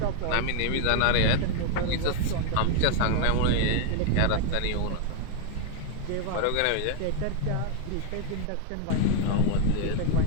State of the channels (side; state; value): both; different; correlation 0.00